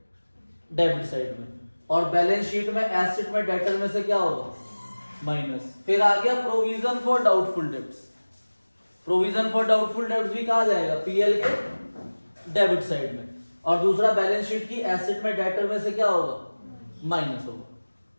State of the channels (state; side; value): inverted; both; correlation -1.00